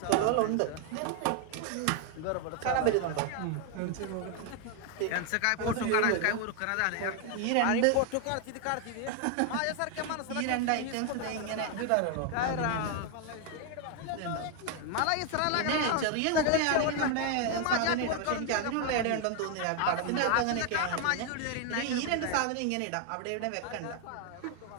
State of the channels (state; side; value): different; both; correlation 0.01